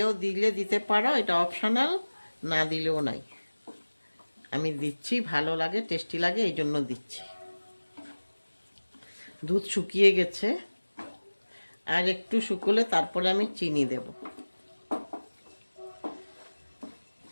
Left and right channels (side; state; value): both; inverted; correlation -1.00